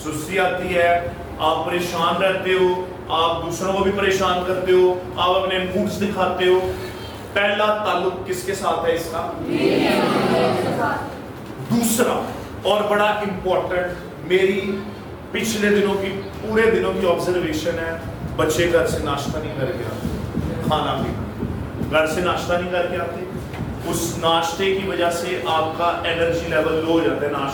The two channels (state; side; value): identical; both; correlation 1.00